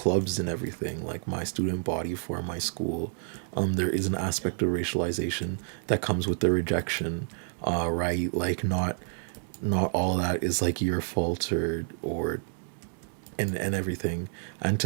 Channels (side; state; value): left; silent; digital silence